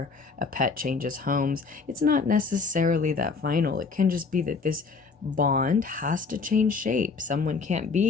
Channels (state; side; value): quieter; right; 4.7 dB